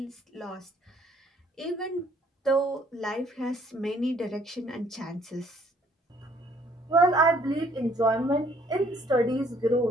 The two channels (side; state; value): both; normal; correlation 0.62